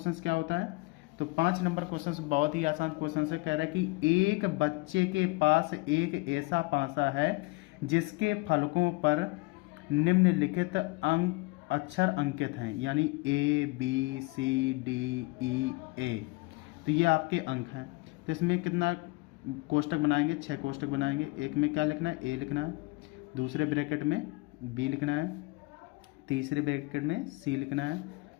क्या होता है? तो 5 नंबर क्वेश्चन बहुत ही आसान क्वेश्चन है। कह रहा है कि एक बच्चे के पास एक ऐसा पासा है जिसके फलकों पर निम्नलिखित अक्षर अंकित हैं, यानी ABCDEA। तो ये आपके अंक हैं। तो इसमें कितना कोष्टक बनाएंगे? 6 कोष्टक बनाएंगे। एक में क्या लिखना है? A लिखना है, दूसरे ब्रैकेट में B लिखना है, तीसरे ब्रैकेट में C लिखना है,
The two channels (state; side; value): quieter; right; 25.4 dB